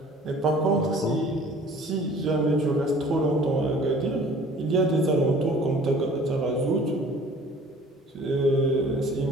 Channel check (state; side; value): normal; both; correlation 0.50